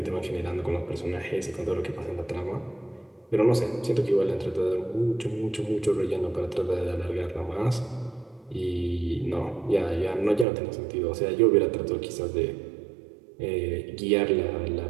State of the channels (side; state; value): left; drops out; at 10.5 s